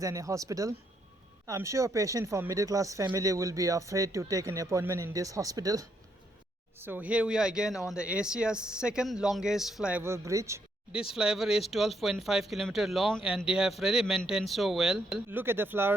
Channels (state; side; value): normal; both; correlation 0.75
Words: a hospital. I'm sure a patient from middle class family will be afraid to take an appointment in this hospital. So here we are again on the Asia's second longest flyover bridge. This flyover is 12.5 km long and they have really maintained so well. Look at the